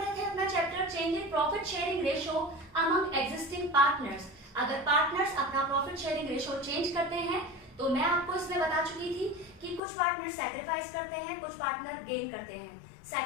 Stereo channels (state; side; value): drops out; right; at 9.8 s